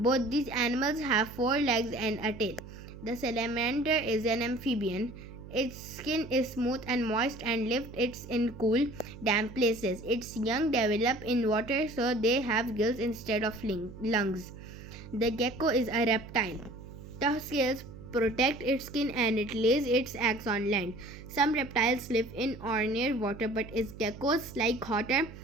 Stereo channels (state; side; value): noise; right; hum, 15 dB below the sound